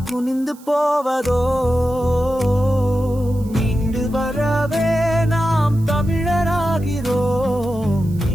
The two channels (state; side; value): noise; right; hiss, 25 dB below the sound